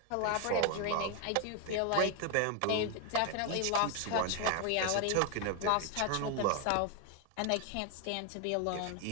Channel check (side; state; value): both; different; correlation 0.01